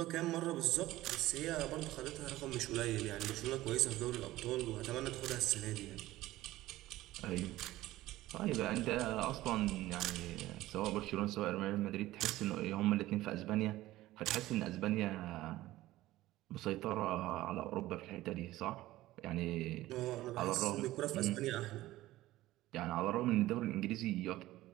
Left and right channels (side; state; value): left; quieter; 16.4 dB